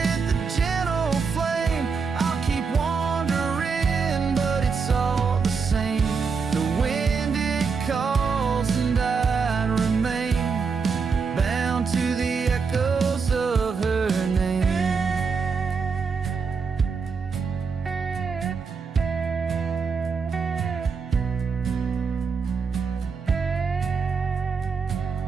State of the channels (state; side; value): quieter; left; 5.3 dB